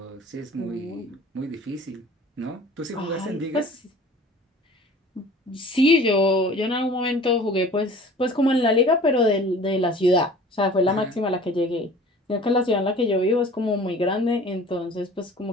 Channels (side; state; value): both; normal; correlation 0.45